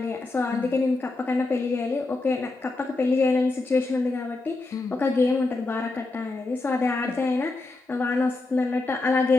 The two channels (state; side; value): quieter; right; 3.3 dB